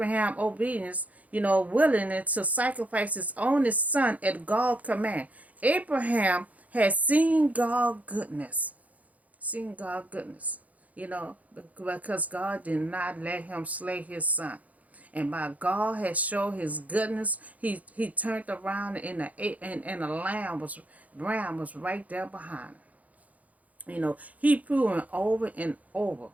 obedience, willing to sacrifice his only son at God's command. Abraham had seen God's goodness. Seen God's goodness. Because God did not let him slay his son. And by God has shown his goodness, he turned around and the ram was right there behind him. He proven over and over,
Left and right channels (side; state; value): left; late; 0.073 ms